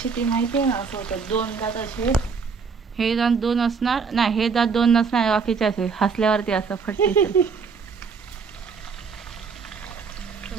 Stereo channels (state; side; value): quieter; left; 5.4 dB